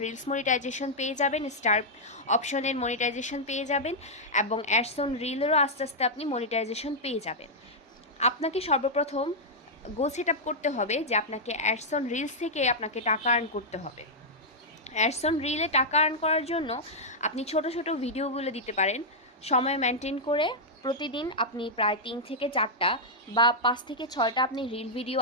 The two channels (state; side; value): normal; both; correlation -0.06